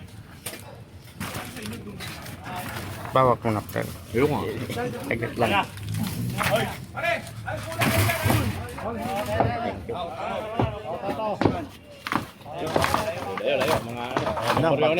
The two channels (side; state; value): both; identical; correlation 1.00